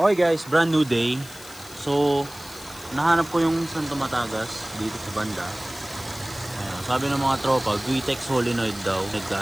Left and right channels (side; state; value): left; noise; hiss, 18 dB below the sound